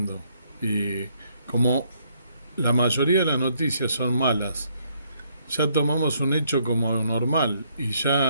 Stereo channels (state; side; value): inverted; both; correlation -0.70